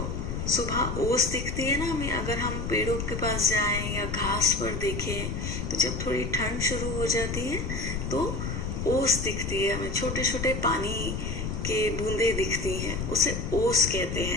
सुबह ओस दिखती है ना हमें, अगर हम पेड़ों के पास जाएं या घास पर देखें, तो जब थोड़ी ठंड शुरू हो जाती है तो ओस दिखती है हमें, छोटे छोटे पानी के बूंदे दिखती हैं, उसे ओस कहते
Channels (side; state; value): left; noise; rumble, 4 dB below the sound